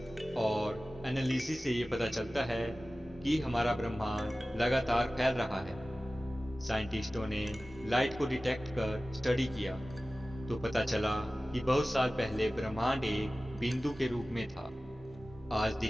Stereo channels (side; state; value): both; normal; correlation 0.96